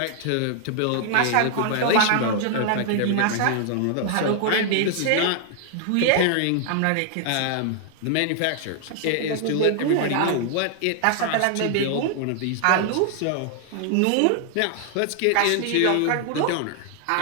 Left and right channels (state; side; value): different; both; correlation 0.00